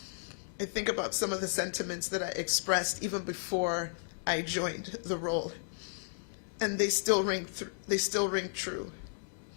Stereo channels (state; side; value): silent; right; digital silence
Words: I think about some of the sentiments that I expressed even before I joined the role, and they still ring true.